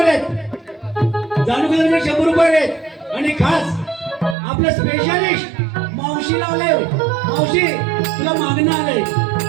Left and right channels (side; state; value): left; drops out; at 4.4 s